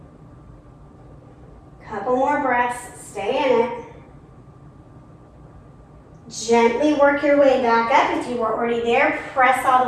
Couple more breaths. Stay in it. Gently work your way back up. If you were already there, press all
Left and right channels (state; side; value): identical; both; correlation 1.00